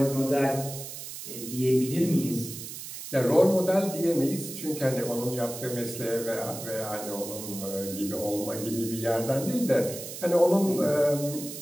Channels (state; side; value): noise; right; hiss, 10 dB below the sound